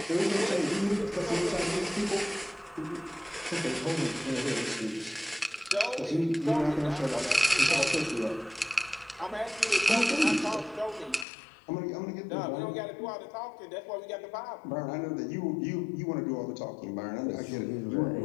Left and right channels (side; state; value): right; drops out; at 11.2 s